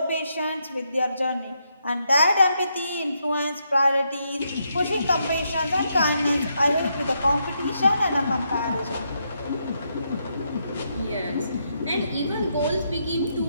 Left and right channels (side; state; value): both; inverted; correlation -0.79